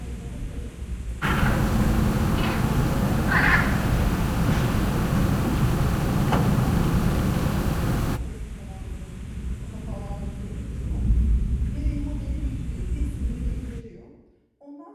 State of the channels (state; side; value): identical; both; correlation 1.00